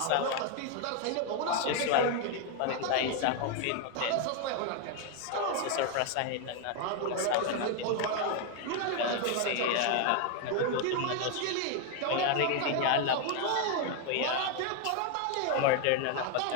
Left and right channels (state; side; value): different; both; correlation 0.01